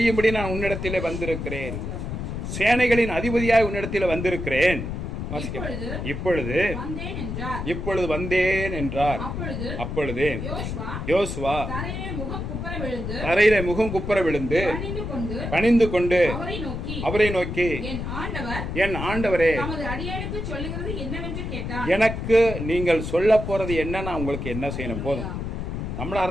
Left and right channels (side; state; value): left; noise; rumble, 5 dB below the sound